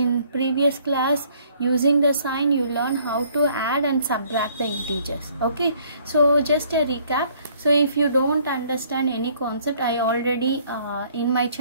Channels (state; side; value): inverted; both; correlation -0.61